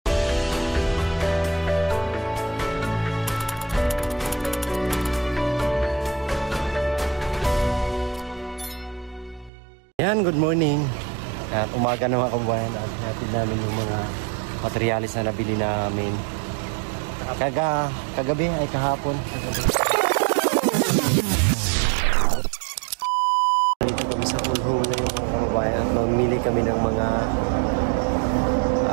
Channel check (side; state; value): left; drops out; at 9.5 s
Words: Yan, good morning. At umaga na mga kababayan at hatid namin yung mga materialis na nabili namin kagabi ay kahapon. Dito kami sa Pulho na yung mga kababayan at mamili kami ng mga